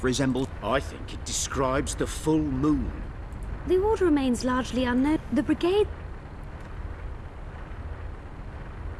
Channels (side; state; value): both; identical; correlation 1.00